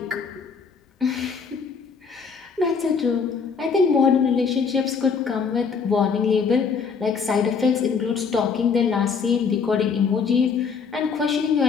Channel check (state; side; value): quieter; right; 5.7 dB